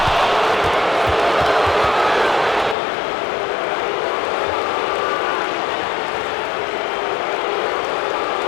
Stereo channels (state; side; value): drops out; right; at 2.8 s